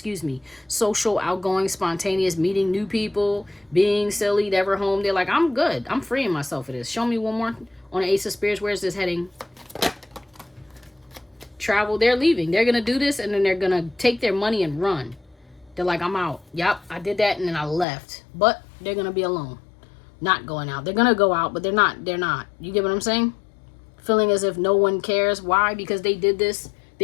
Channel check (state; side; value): drops out; right; at 17.9 s